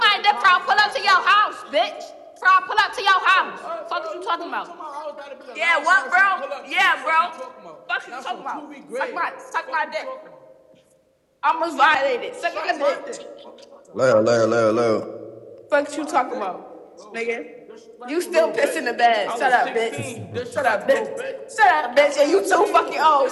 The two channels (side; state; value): both; identical; correlation 1.00